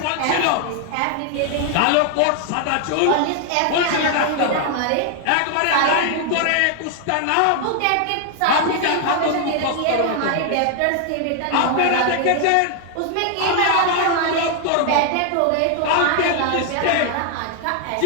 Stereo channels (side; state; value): both; different; correlation 0.00